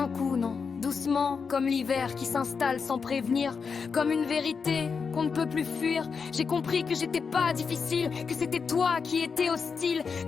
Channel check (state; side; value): quieter; right; 5.6 dB